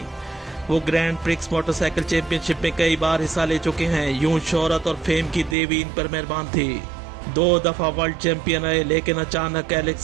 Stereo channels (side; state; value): left; drops out; at 5.6 s